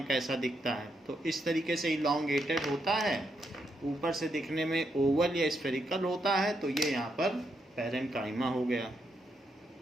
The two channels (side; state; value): both; normal; correlation 0.80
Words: कैसा दिखता है। तो इस तरीके से इलॉन्गेटेड होता है, ऊपर से दिखने में ओवल या स्फेरिकल होता है। तो ये यहाँ पर पैरेन्काइमा हो गया।